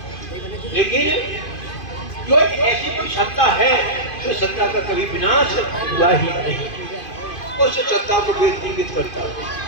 लेकिन जो ऐसी कोई सत्ता है तो सत्ता का कभी विनाश हुआ ही नहीं, उस सत्ता को वेद इंगित करता है।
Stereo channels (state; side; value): late; right; 2.5 ms